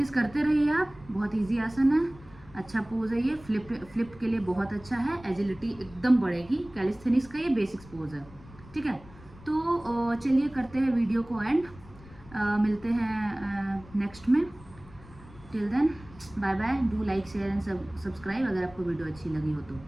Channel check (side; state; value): left; noise; rumble, 21 dB below the sound